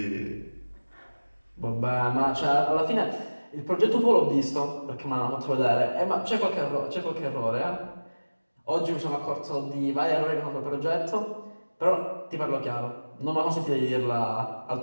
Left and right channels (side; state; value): both; inverted; correlation -1.00